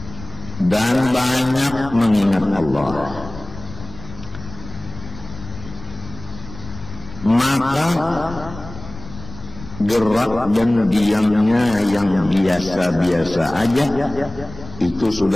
dan banyak mengingat Allah, maka gerak dan diamnya yang biasa-biasa aja itu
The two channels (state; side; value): noise; left; rumble, 14 dB below the sound